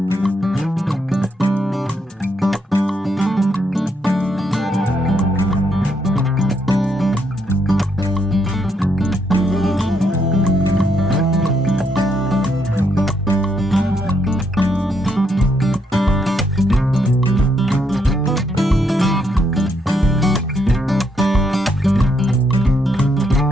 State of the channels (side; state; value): both; normal; correlation 0.75